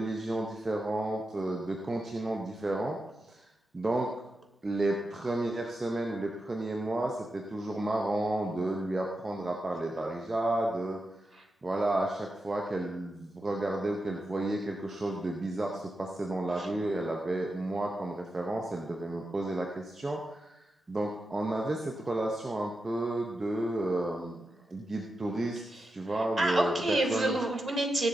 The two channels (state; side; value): normal; both; correlation 0.88